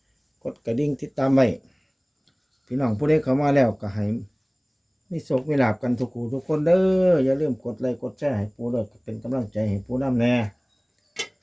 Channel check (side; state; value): both; identical; correlation 1.00